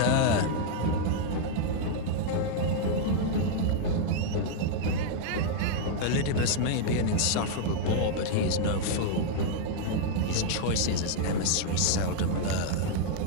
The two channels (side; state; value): both; different; correlation -0.01